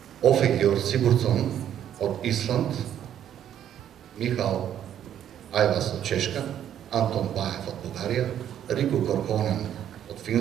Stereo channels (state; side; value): quieter; left; 10.2 dB